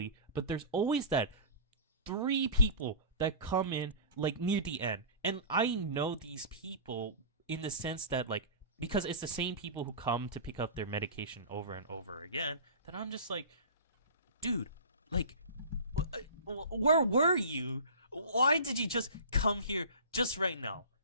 but there's always that 3 people that come in like near the end. And I know these people in the sense that, like, because it's the same people who come to pick up their medication over and over again, that I'm just like, dude, like, where were you? Why did you just come here just right now?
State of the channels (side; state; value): both; inverted; correlation -0.35